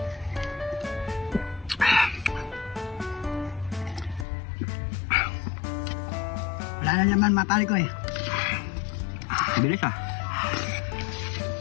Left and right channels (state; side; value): drops out; right; at 4.2 s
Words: Wala na naman mga pare ko eh. Bilis ah.